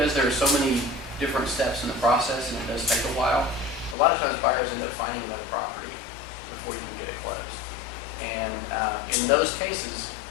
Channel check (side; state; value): right; drops out; at 4.0 s